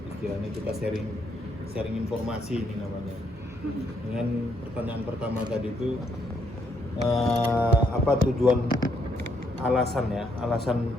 istilahnya kita sharing informasi ini namanya. Dengan pertanyaan pertama tadi itu apa tujuan alasan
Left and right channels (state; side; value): normal; both; correlation 0.73